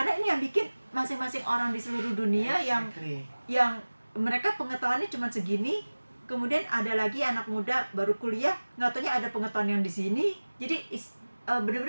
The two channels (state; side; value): inverted; both; correlation -1.00